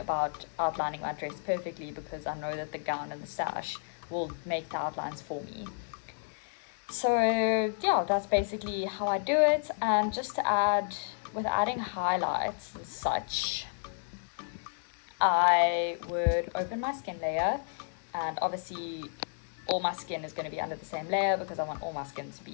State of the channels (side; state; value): right; silent; 57 dB below the other